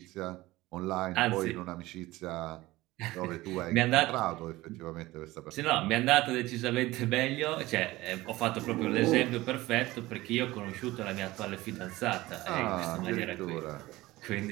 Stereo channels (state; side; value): quieter; left; 18.6 dB